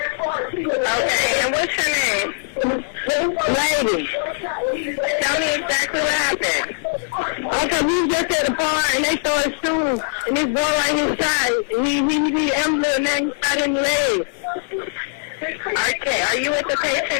Okay, and what's your name? Lady. Tell me exactly what happened. Okay, we was just at the bar and they started shooting, and this boy right inside, he ambulance and he shot in the leg. All right, can Okay, are you with the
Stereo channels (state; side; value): silent; right; digital silence